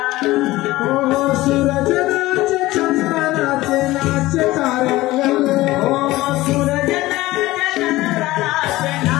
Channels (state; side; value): quieter; right; 17.9 dB